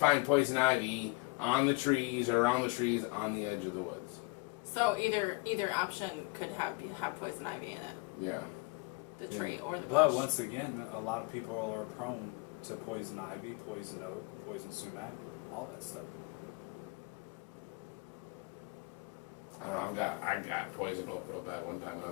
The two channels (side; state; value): right; quieter; 27.6 dB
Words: poison ivy on the trees or around the trees on the edge of the woods. So either option could have poison ivy in it. Yeah. The tree or the bush. But once again, a lot of people are prone to poison ivy, poison oak, poison sumac, all that stuff. I don't know, I got poison oak real bad one time when I